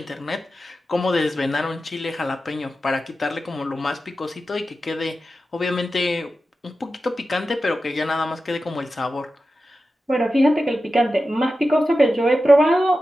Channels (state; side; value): normal; both; correlation 0.92